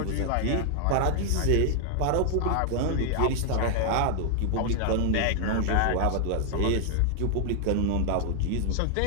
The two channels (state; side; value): different; both; correlation 0.00